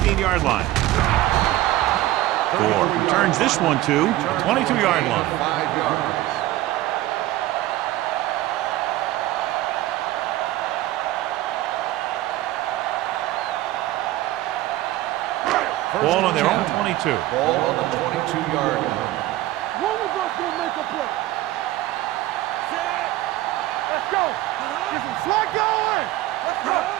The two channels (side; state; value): left; quieter; 16.0 dB